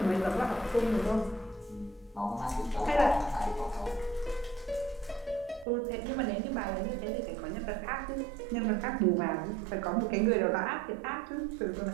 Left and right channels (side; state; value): left; drops out; at 5.7 s